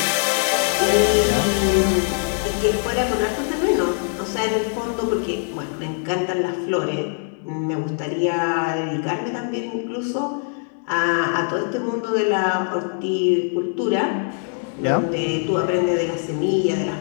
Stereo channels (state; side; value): silent; right; 60 dB below the other